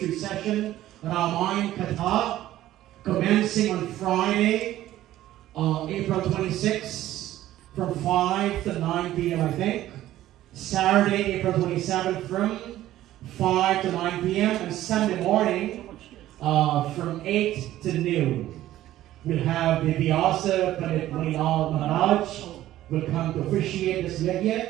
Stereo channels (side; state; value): left; quieter; 14.0 dB